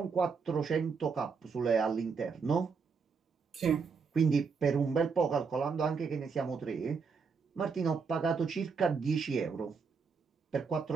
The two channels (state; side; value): quieter; left; 5.4 dB